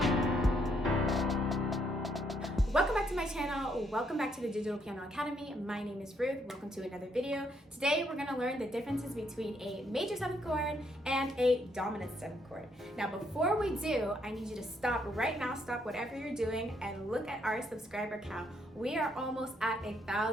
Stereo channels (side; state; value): both; normal; correlation 0.73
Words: Welcome back to my channel. Welcome back to the Digital Piano Academy. My name is Ruth. Welcome to another video. Today we're going to learn the differences between a major 7th chord and a dominant 7th chord. Now before we do, I need you to stop right now, stop whatever you're doing, and look at our subscriber count. We are almost at